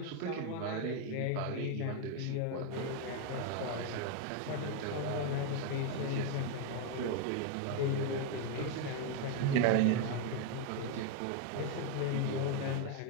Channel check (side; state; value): both; different; correlation 0.01